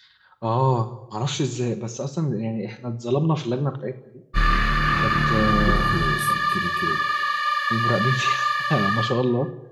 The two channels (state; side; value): identical; both; correlation 1.00